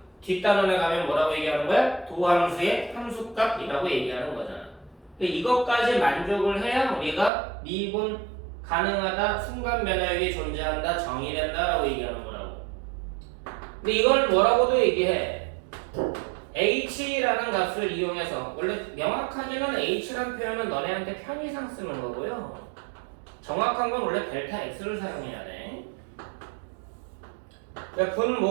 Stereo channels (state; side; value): drops out; left; at 7.3 s